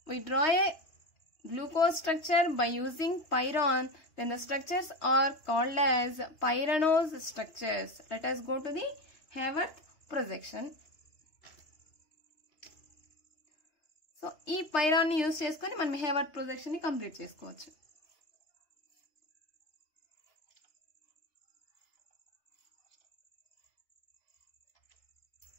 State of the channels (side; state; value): right; late; 3.2 ms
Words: we draw a glucose structure by using pyrrhon, then the structures are called as pyranose structures. Let us go to the Haworth projection. So ఈ pyrrhon ని యూజ్ చేసుకొని మనం Haworth projection ని complete చేసుకోవచ్చు.